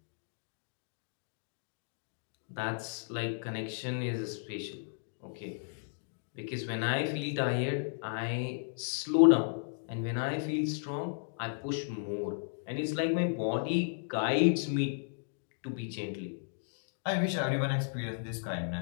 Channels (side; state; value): right; silent; digital silence